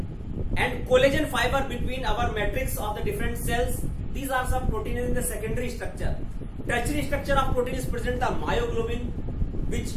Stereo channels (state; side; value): identical; both; correlation 1.00